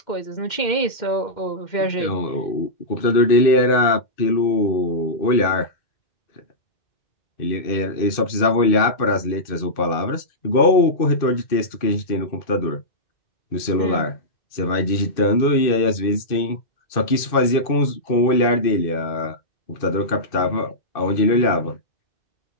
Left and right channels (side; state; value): right; late; 2.6 ms